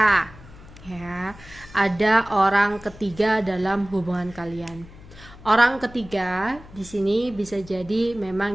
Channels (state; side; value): noise; left; hum, 19 dB below the sound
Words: ya ada orang ketiga dalam hubungan kalian. Orang ketiga di sini bisa jadi